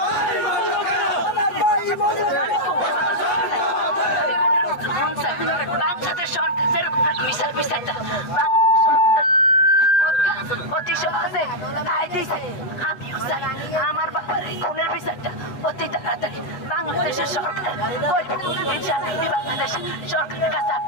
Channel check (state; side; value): late; right; 8.0 ms